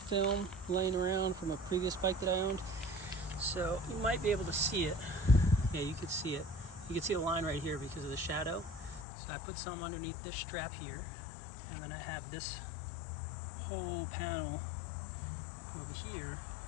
film laying around from a previous bike that I owned. So you might be able to see it. Yeah, you could see it. You can see the line right here because of the shadow. So I put some underneath this strap here, and then I have this whole panel over here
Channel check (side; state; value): right; drops out; at 9.1 s